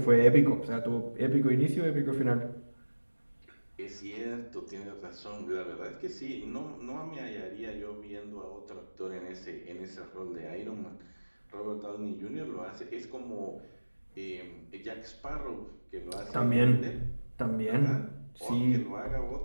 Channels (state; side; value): inverted; both; correlation -1.00